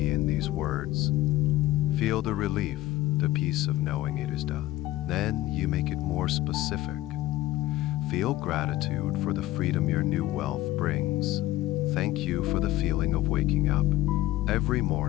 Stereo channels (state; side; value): quieter; right; 16.0 dB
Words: in these words. Feel the relief, the peace of knowing it is done. Then you make it more specific. Feel gratitude for the freedom your new wealth brings. Thank you for the feeling of waking up every